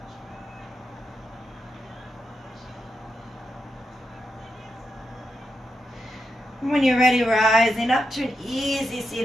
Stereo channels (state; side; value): normal; both; correlation 0.86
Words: When you're ready, rising up to an easy